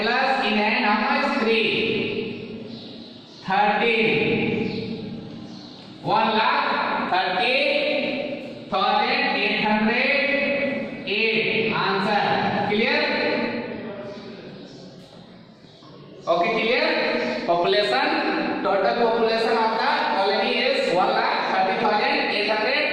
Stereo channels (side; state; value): both; identical; correlation 1.00